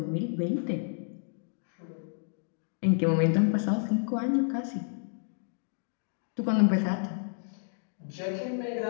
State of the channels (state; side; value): silent; right; digital silence